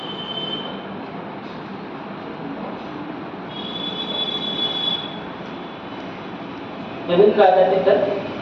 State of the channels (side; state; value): both; identical; correlation 1.00